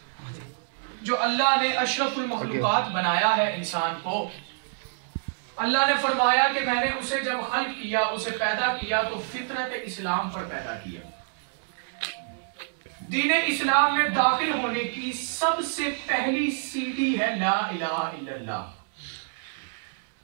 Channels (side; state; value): left; silent; 60 dB below the other